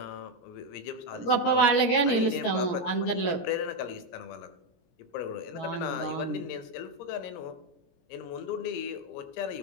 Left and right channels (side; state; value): right; late; 17 ms